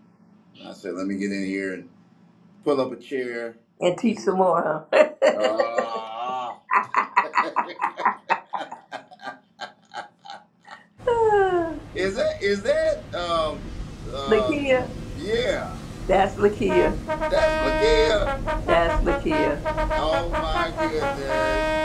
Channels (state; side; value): identical; both; correlation 1.00